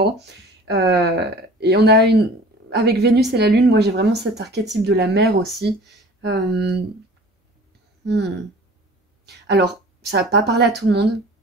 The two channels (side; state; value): both; normal; correlation 0.45